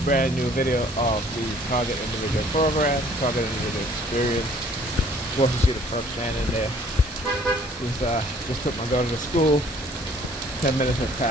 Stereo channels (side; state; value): both; normal; correlation 0.57